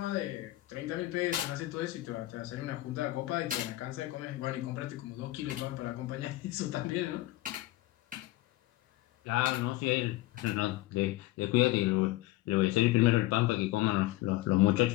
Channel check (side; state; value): right; quieter; 17.5 dB